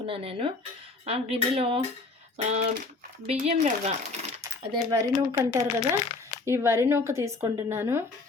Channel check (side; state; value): right; quieter; 3.6 dB